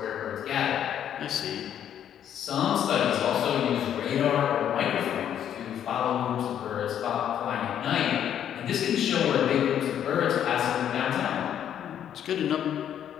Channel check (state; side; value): quieter; right; 9.8 dB